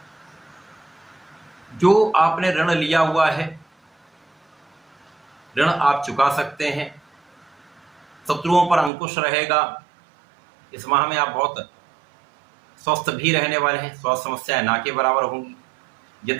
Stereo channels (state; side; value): drops out; left; at 8.9 s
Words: जो आपने ऋण लिया हुआ है, ऋण आप चुका सकते हैं। शत्रुओं पर अंकुश रहेगा। इस माह में आप बहुत स्वस्थ भी रहने वाले हैं, स्वास्थ्य समस्याएं ना के बराबर होंगी।